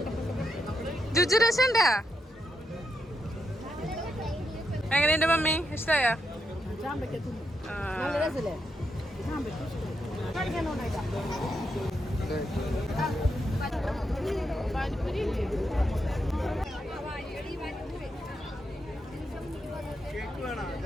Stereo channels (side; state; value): both; normal; correlation 0.82